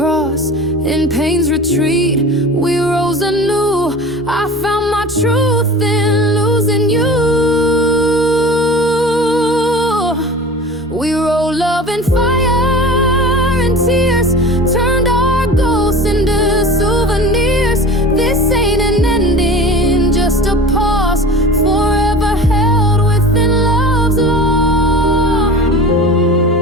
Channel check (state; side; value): normal; both; correlation 0.37